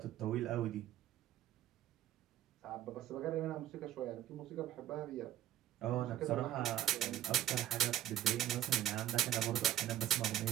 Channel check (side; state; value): left; quieter; 12.3 dB